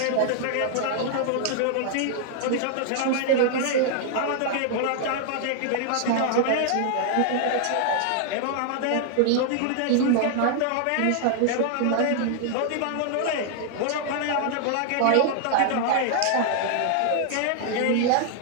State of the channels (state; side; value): different; both; correlation 0.00